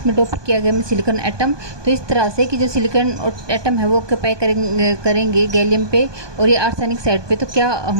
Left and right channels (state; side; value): late; left; 1.2 ms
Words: डोप किया गया है सिलिकॉन एटम। तो इस तरह से कि जो सिलिकॉन एटम है वो ऑक्यूपाई करेंगे गैलियम पे और ये आर्सेनिक साइड पे, तो क्या